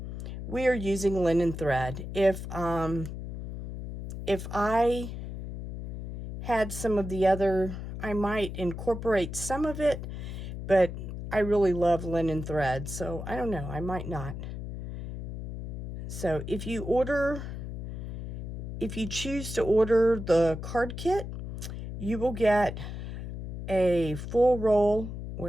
we are using linen thread. If I had some of the other, I might incorporate some of it, but I really love linen thread, so I don't know, I might not. So if you choose to order the card kit, you will get a full roll.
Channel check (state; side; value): noise; left; hum, 7 dB below the sound